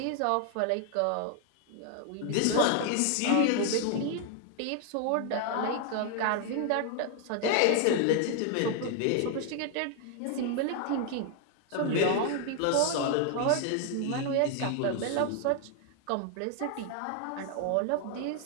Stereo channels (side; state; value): both; different; correlation 0.00